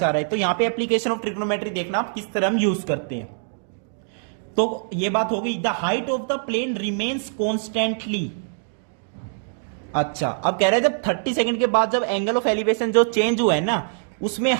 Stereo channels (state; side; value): silent; left; digital silence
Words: रहा है। तो यहां पे एप्लीकेशन ऑफ ट्रिग्नोमेट्री देखना आप किस तरह हम यूज करते हैं। तो ये बात हो गई, the height of the plane remains constantly. अच्छा, अब कह रहे हैं जब 30 सेकंड के बाद जब एंगल ऑफ एलिवेशन जो चेंज हुआ है ना, उसमें